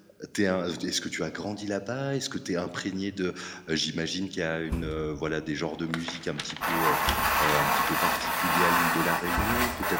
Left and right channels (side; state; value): both; identical; correlation 1.00